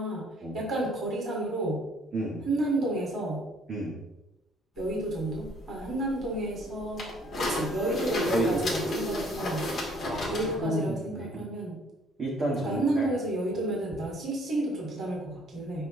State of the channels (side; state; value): both; normal; correlation 0.60